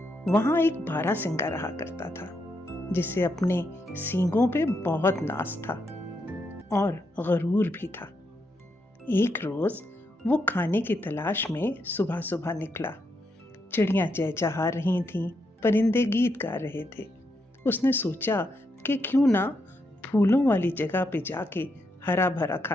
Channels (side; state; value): both; normal; correlation 0.80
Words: وہاں ایک بارہ سنگا رہا کرتا تھا جسے اپنے سینگوں پہ بہت ناز تھا اور غرور بھی تھا۔ ایک روز وہ کھانے کی تلاش میں صبح صبح نکلا۔ چڑیاں چہچہا رہی تھیں، پرندے گیت گا رہے تھے۔ اس نے سوچا کہ کیوں نہ پھولوں والی جگہ پہ جا کے ہرا بھرا